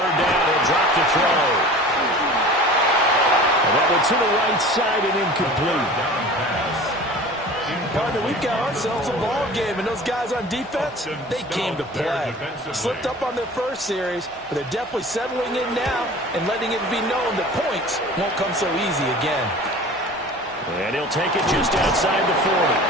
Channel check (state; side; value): normal; both; correlation 0.40